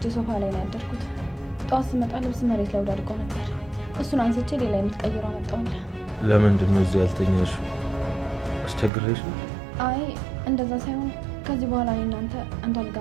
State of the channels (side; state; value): left; drops out; at 8.9 s